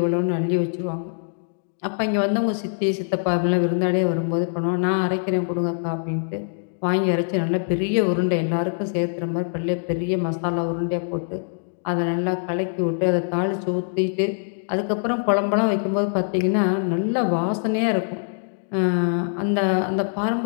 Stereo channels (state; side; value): silent; right; digital silence